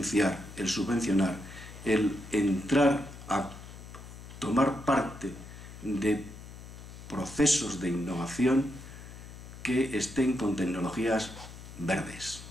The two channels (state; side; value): noise; left; hum, 14 dB below the sound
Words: el subvencionar, el entrar a tomar parte de procesos de innovación que estén con tecnologías verdes,